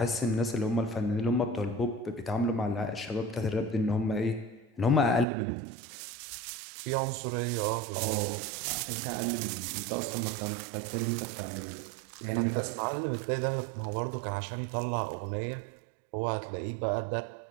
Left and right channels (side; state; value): left; drops out; at 5.2 s